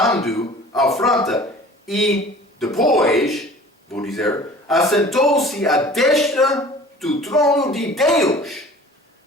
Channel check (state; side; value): normal; both; correlation 0.45